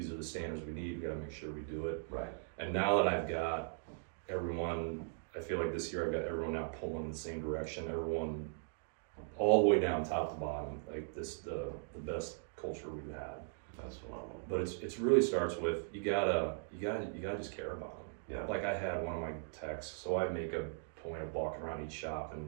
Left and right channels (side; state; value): left; silent; digital silence